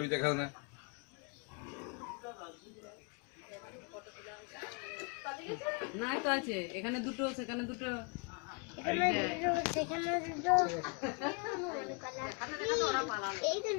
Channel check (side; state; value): right; quieter; 35.7 dB